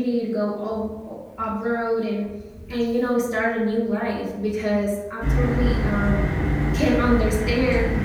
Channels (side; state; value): both; identical; correlation 1.00